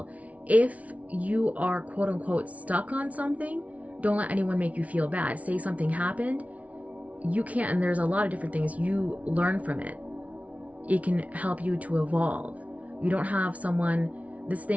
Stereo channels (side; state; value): left; late; 0.067 ms